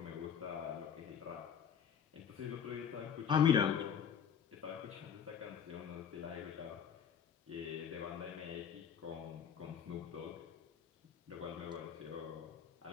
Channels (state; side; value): quieter; right; 7.9 dB